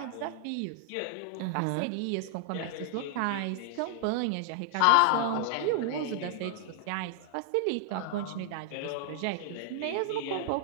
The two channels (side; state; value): both; different; correlation 0.00